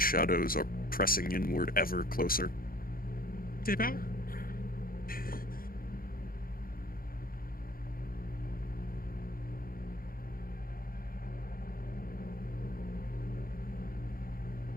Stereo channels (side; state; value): right; late; 0.42 ms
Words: shadows are pressing inward ever closer. Dip out?